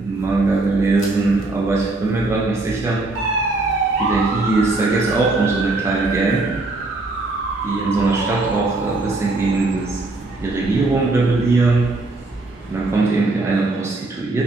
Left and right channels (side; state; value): left; quieter; 3.1 dB